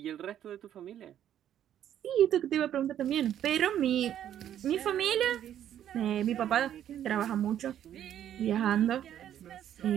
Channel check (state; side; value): quieter; left; 10.7 dB